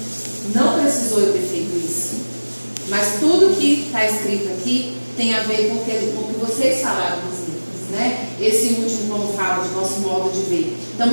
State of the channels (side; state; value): both; inverted; correlation -1.00